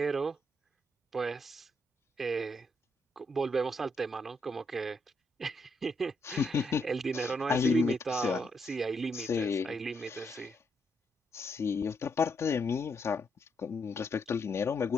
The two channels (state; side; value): normal; both; correlation 0.78